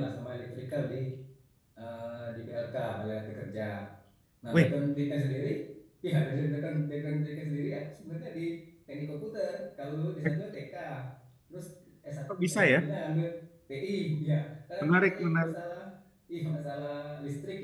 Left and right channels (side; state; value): both; identical; correlation 1.00